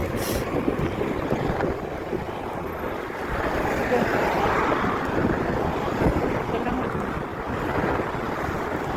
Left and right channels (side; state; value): both; identical; correlation 1.00